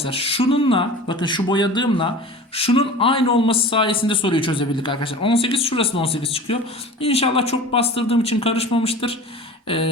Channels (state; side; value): normal; both; correlation 0.37